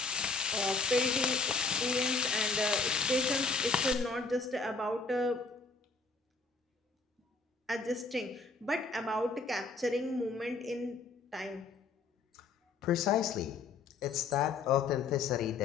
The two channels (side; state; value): right; quieter; 4.1 dB